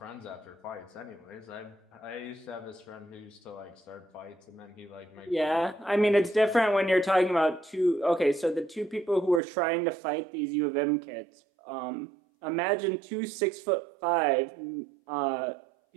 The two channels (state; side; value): drops out; left; at 9.4 s